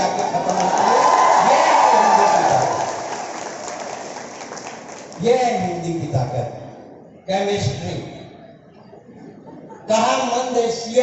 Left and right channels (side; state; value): both; identical; correlation 1.00